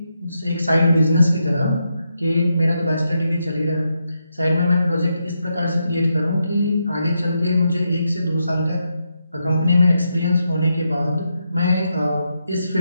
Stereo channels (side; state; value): both; inverted; correlation -0.83